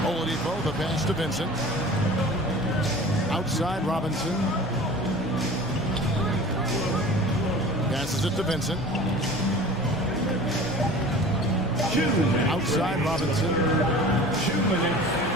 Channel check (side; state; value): left; noise; hum, 18 dB below the sound